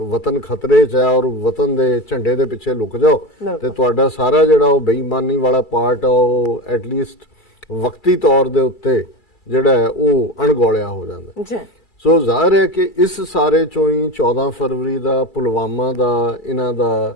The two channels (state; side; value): late; right; 2.3 ms